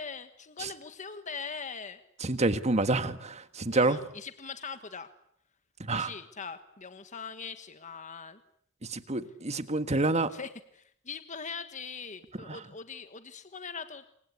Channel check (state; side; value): normal; both; correlation 0.31